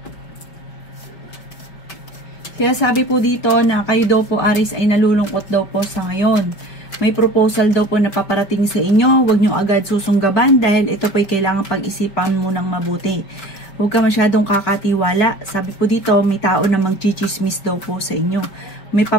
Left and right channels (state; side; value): late; right; 5.2 ms